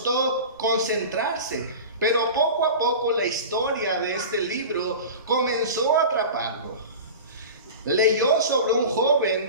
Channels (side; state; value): both; inverted; correlation -0.33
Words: concentrarse, pero poco a poco la historia de este libro comenzó a atraparlo. Leyó sobre un